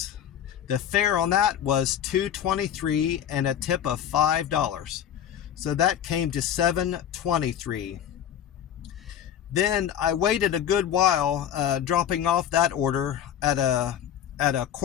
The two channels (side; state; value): right; quieter; 9.8 dB